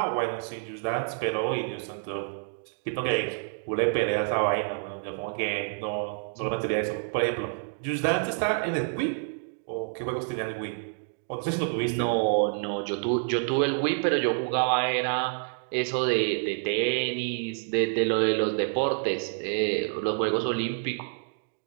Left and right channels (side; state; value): left; silent; digital silence